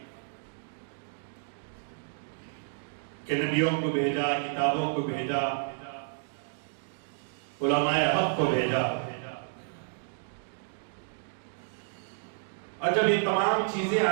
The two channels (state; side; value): silent; left; digital silence